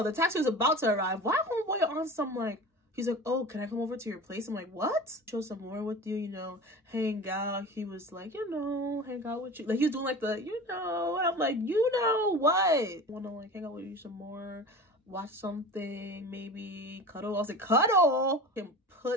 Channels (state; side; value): normal; both; correlation 0.34